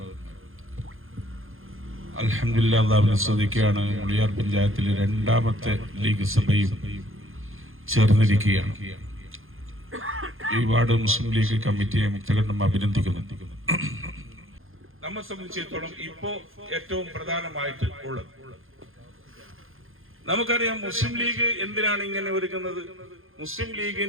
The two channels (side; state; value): left; late; 0.60 ms